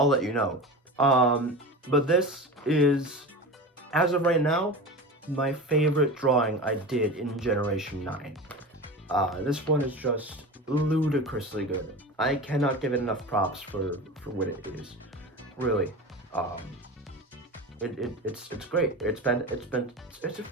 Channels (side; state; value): both; normal; correlation 0.29